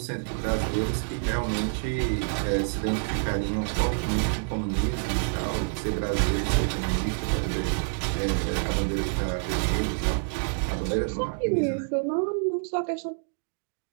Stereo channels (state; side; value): silent; left; digital silence